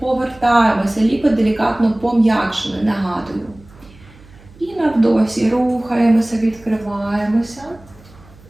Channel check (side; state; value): right; noise; hum, 24 dB below the sound